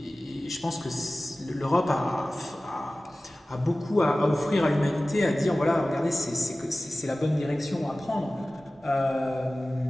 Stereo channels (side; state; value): both; normal; correlation 0.97